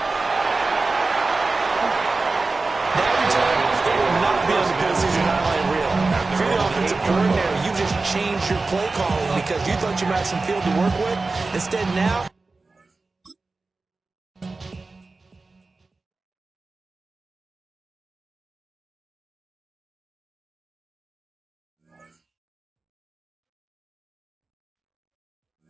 Coordinator, you just changed your play calling because you thought you might have some field to work with. Instead, now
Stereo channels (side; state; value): left; quieter; 3.7 dB